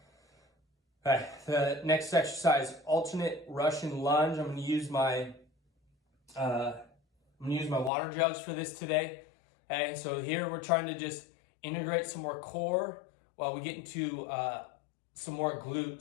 All right, the next exercise, alternate Russian lunge. I'm gonna use my water jugs for this today. Okay, so here we're trying to just integrate some more core while we get into some more glute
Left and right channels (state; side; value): drops out; right; at 7.9 s